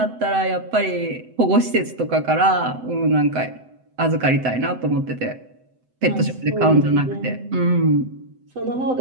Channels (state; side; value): late; left; 7.9 ms